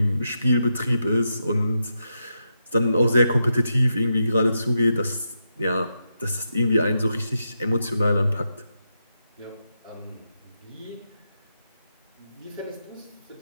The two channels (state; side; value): inverted; both; correlation -0.86